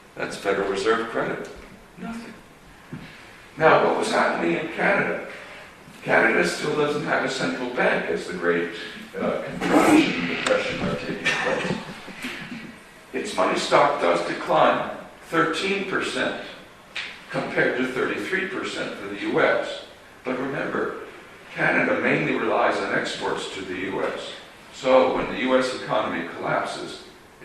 That's Federal Reserve credit. Nothing. Now, what was happening in Canada? Canada still doesn't have a central bank as the great contraction and depression are taking place. Its money stock does decline 13% compared to 33% for the U.S. But remember, Canada mainly relies on exports to the U.S. So when the U.S. economy collapses,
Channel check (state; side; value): identical; both; correlation 1.00